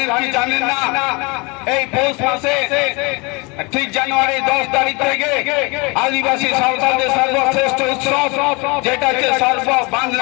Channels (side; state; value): right; quieter; 28.1 dB